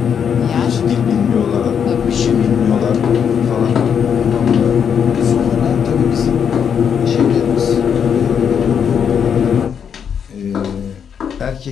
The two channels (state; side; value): quieter; right; 7.6 dB